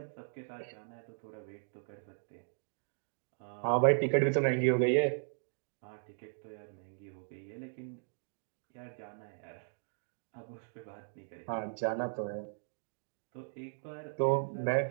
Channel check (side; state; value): left; silent; digital silence